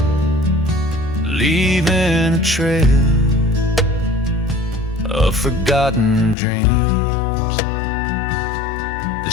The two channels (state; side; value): drops out; right; at 6.4 s